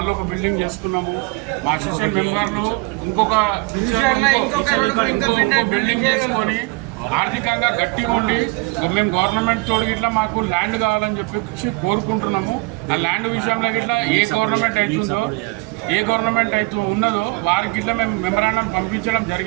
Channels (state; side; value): quieter; left; 25.3 dB